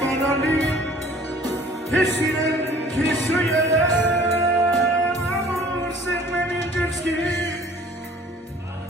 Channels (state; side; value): normal; both; correlation 0.51